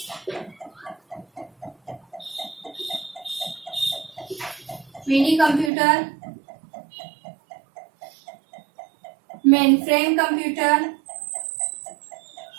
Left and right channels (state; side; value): drops out; left; at 5.7 s